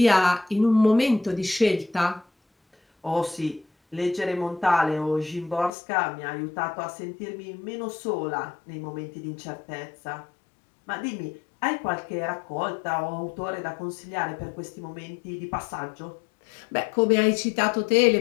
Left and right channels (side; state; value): right; drops out; at 5.7 s